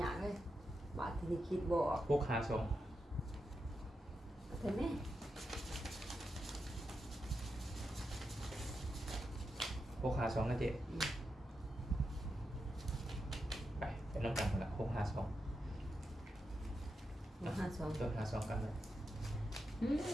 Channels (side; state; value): both; normal; correlation 0.87